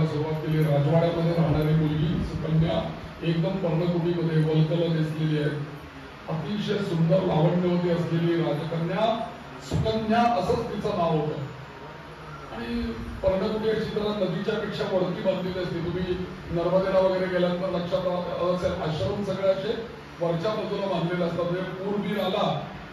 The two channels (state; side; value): identical; both; correlation 1.00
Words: सुरुवात केली. राजवाड्यामध्ये राहणारी मुलगी सुकन्या एकदम पर्णकुटीमध्ये वलकल दिसलेली आहे, अतिशय सुंदर लावण्यवती असलेली राजकन्या सुकन्या असंच तिचं नाव होतं. आणि पर्णकुटी अशी जरा नदीच्या पेक्षा वरती बांधलेली असते. तुम्ही नर्मदेला वगैरे गेल्यानंतर लक्षात असेल, आश्रम सगळे असे वरच्या बाजूला बांधलेले असतात. म्हणजे पूर बीर आला